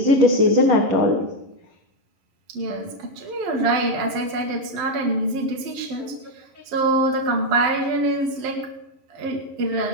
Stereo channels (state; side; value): late; left; 11 ms